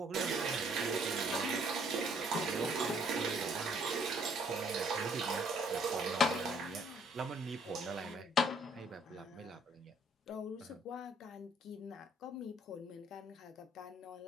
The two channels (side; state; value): both; normal; correlation 0.63